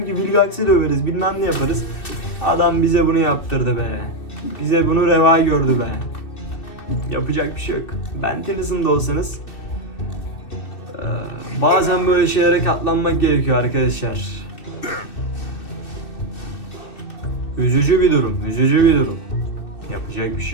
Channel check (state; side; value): late; right; 2.6 ms